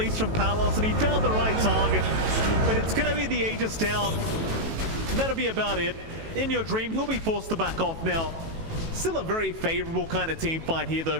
from Palos, and he found the right target. But it's going to be the Aegis down. And that'll be about it. In Your Dream, he'll be forced to back off now. Still a very favorable kind of team fight here though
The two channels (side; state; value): left; late; 18 ms